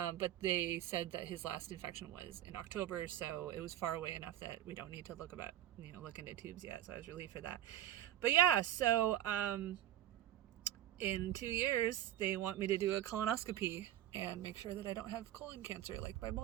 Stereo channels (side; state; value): left; quieter; 12.2 dB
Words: they said that his last infection was in October, so it was far away enough that we don't need to look into tubes yet. So I was relieved for that. But yeah, so in 2 years, they want me to do a colonoscopy and make sure that I don't have colon cancer like my